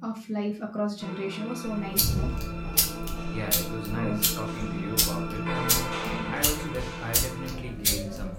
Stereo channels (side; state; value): both; identical; correlation 1.00